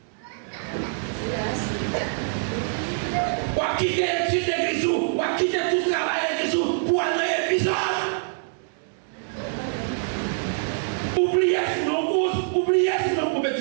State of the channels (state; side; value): silent; left; digital silence